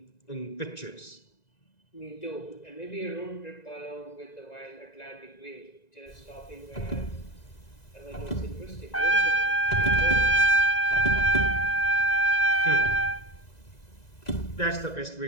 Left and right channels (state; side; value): late; right; 2.0 ms